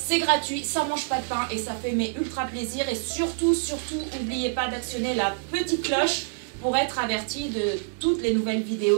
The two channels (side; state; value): left; silent; 61 dB below the other